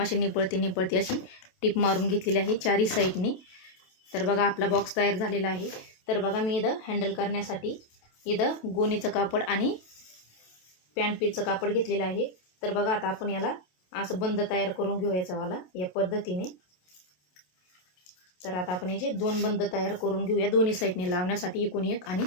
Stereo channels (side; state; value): right; late; 27 ms